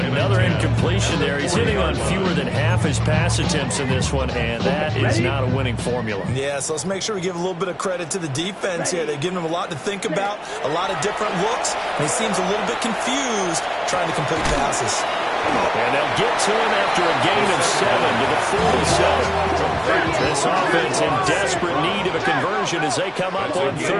incompletion there. He's hitting on fewer than half his pass attempts in this one, and that is not a winning formula. Yeah, so let's make sure we give a little bit of credit to the defense here. They've given him a lot to think about, a lot of different looks, and he seems a little bit confused trying to complete passes. And they'll get to him after a gain of 7 to the 47. This offense in desperate need of a conversion as they come up on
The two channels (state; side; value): identical; both; correlation 1.00